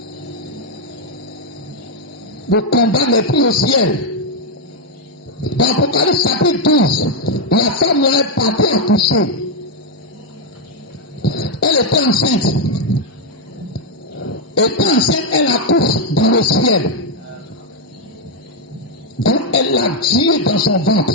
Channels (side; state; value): both; normal; correlation 0.01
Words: Le combat n'est plus au ciel. Dans Apocalypse chapitre 12, la femme là est partie accoucher. Elle était enceinte. Étant enceinte, elle accouche dans le ciel. Donc elle a Dieu dans son ventre.